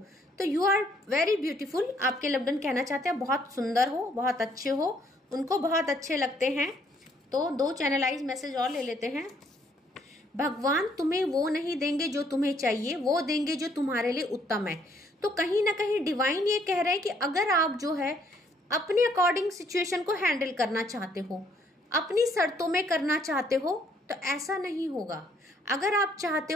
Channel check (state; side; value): normal; both; correlation 0.66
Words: तो यू आर वेरी ब्यूटीफुल, आपके लव्ड वन कहना चाहते हैं बहुत सुंदर हो, बहुत अच्छे हो, उनको बहुत अच्छे लगते हैं। तो 2 चैनलाइज मैसेज और ले लेते हैं। भगवान तुम्हें वो नहीं देंगे जो तुम्हें चाहिए, वो देंगे जो तुम्हारे लिए उत्तम है। तो कहीं ना कहीं डिवाइन ये कह रहे हैं कि अगर आप जो है अपने अकॉर्डिंग सिचुएशन को हैंडल करना चाहते हो, अपनी शर्तों में करना चाहते हो तो ऐसा नहीं होगा। अगर आप चाहते